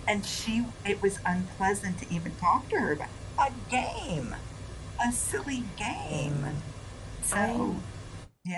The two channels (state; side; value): identical; both; correlation 1.00